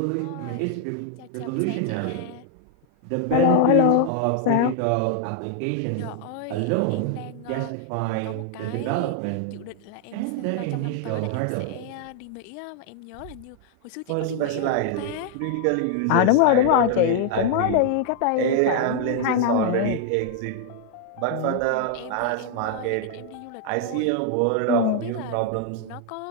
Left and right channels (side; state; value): both; different; correlation 0.00